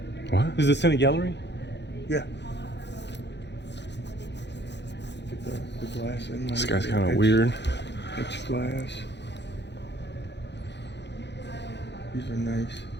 What? Is the Senate gallery? Yeah. Get the glass in. This guy's kind of weird. It's glass. These are nice.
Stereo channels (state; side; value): late; right; 0.50 ms